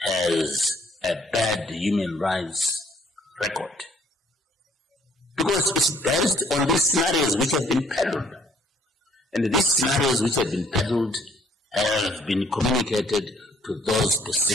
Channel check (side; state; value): both; normal; correlation 0.62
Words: has a bad human rights record. Because it's based on these scenarios which have been peddled. And these scenarios which have been peddled have been communicated to those